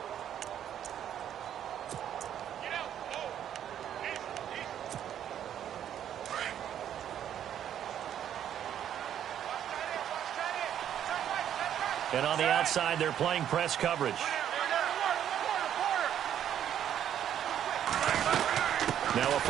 And on the outside, they're playing press coverage. Now a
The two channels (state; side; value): quieter; left; 10.0 dB